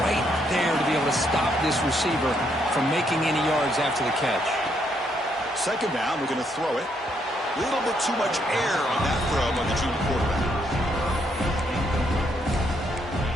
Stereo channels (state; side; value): normal; both; correlation 0.74